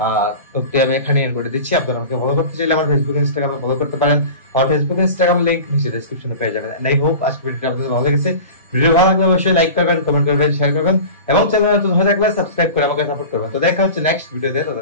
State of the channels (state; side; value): inverted; both; correlation -0.35